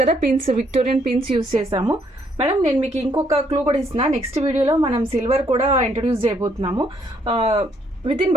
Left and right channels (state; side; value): normal; both; correlation 0.69